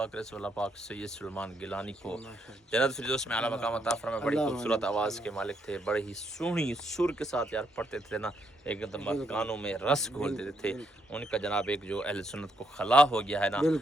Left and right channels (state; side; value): normal; both; correlation 0.75